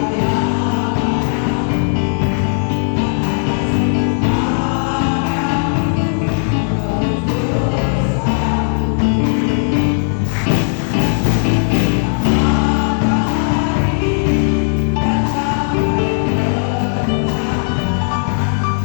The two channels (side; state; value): right; silent; digital silence